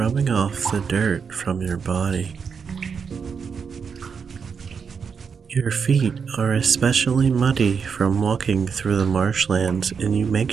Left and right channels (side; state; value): left; quieter; 6.2 dB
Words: off the dirt from your body. Your feet are especially muddy from walking through the marshlands, and you make